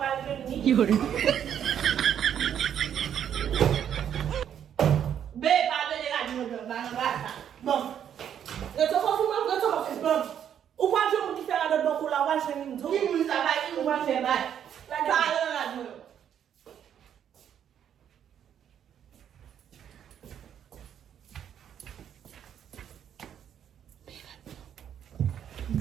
Yuri. Bon. Eu tô falando, bom. O quadro é muito diferente do banco lá, vai ser muito. Que muito trabalho, que vai ser mais. Lá tá, meu.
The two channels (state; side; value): quieter; left; 9.2 dB